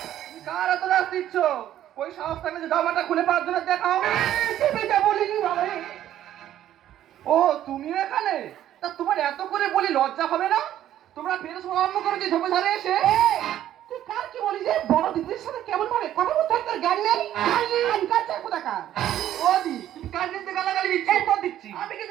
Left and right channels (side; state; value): left; quieter; 12.0 dB